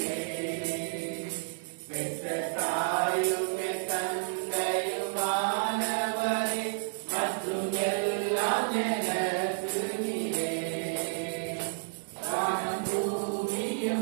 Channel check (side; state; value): left; silent; digital silence